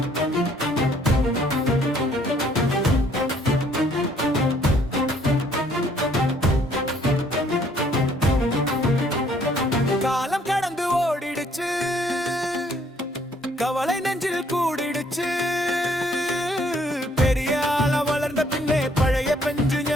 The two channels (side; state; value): both; normal; correlation 0.63